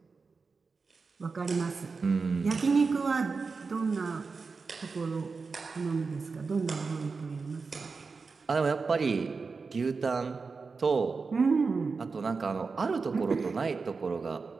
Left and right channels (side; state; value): left; quieter; 4.6 dB